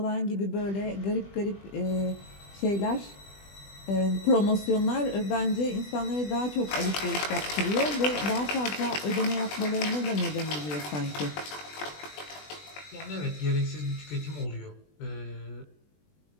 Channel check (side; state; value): right; late; 20 ms